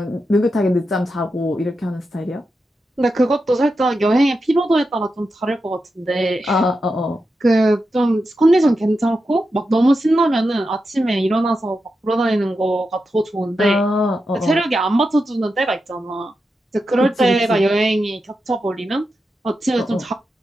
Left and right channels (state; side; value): normal; both; correlation 0.88